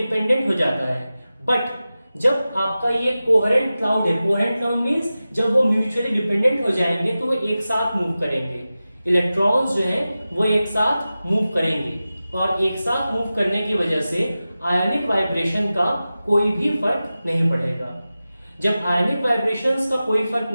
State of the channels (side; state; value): both; inverted; correlation -0.95